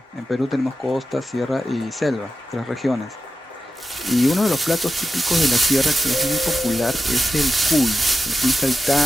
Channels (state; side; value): normal; both; correlation 0.91